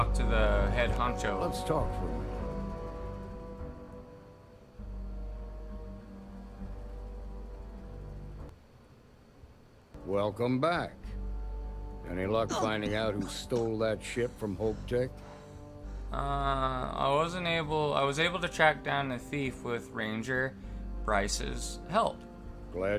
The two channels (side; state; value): both; identical; correlation 1.00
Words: to the head honcho. Let's talk for a minute. Welcome back. Any luck finding out who stole that ship from Hope Tech? I was able to track down the thief with Ranger Bryce's help.